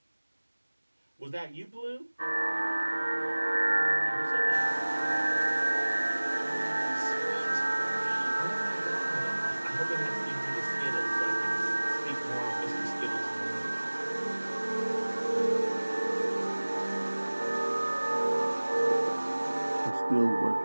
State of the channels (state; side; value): inverted; both; correlation -1.00